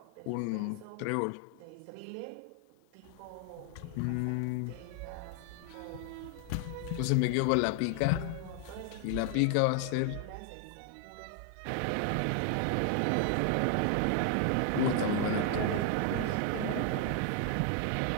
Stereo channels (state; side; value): different; both; correlation 0.00